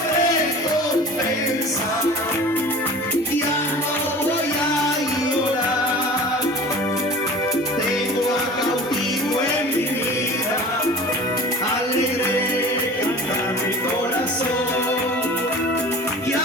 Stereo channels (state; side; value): normal; both; correlation 0.40